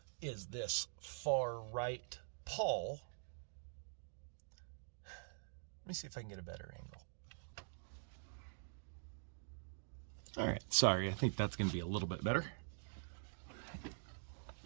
is this far right pawl. Let me see if I can get a better angle. All right, sorry, I think that's going to be a little bit better.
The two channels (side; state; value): left; silent; digital silence